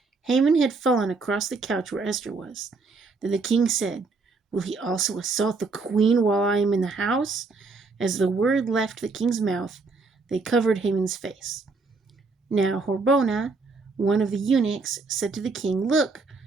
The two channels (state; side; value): quieter; left; 4.1 dB